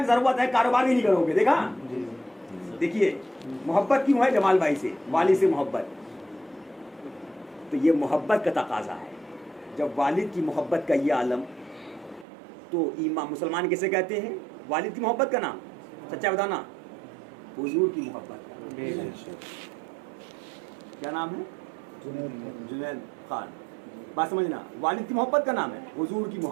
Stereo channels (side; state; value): left; drops out; at 12.2 s